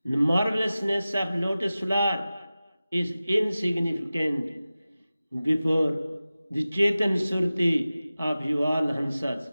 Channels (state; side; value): inverted; both; correlation -0.96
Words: the marvelousness of lotus flower is insignificant before the Chetan Surti of you all Hansas,